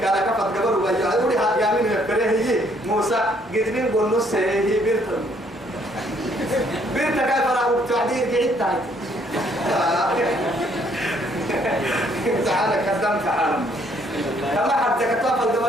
كلا كفت قبل وجاء يقول هذا يمين يفكره هي موسى قدرين بونس هي بيرتم كيف راح تعديل قعدت تعالى كذب تعالى كما حتى كتاب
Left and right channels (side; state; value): both; normal; correlation 0.66